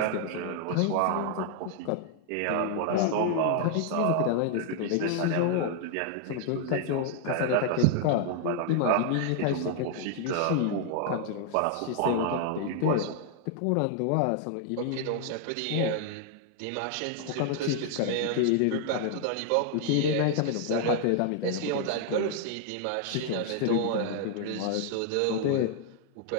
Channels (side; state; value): both; different; correlation 0.00